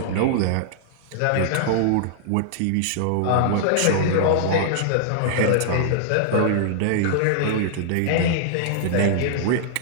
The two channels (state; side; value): different; both; correlation -0.01